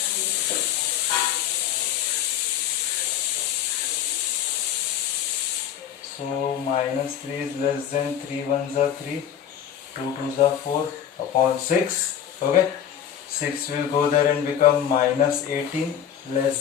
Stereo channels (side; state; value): right; quieter; 9.6 dB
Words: So minus 3 is less than 3 ones are 3, 2 twos are 4 upon 6. Okay, 6 will go there and become minus 18